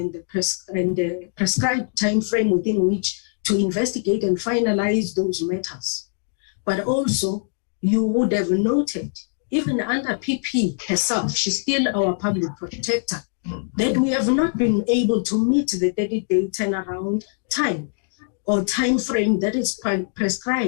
the prescribed time frame within which to investigate and finalize those matters. But also, you would have noted, even under PP herself, she's still our public protector, that we have not been able to meet the 30-day turnaround time or time frame that is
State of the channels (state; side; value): silent; right; digital silence